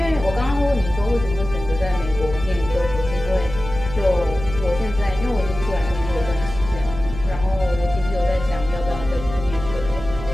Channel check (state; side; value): noise; right; hum, 10 dB below the sound